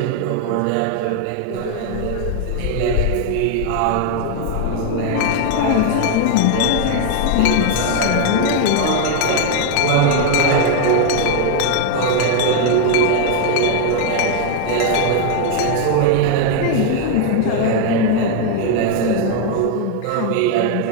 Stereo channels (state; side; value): different; both; correlation 0.00